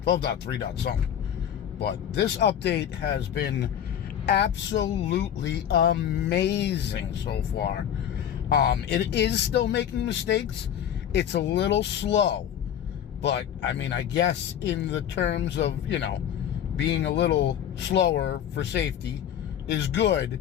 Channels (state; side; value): quieter; right; 9.7 dB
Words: 12.3. something. But this update has been absolutely amazing so far. It is still making mistakes. It's a little slow. But, I mean, I guess in the terms of, being a little slower for safety is good.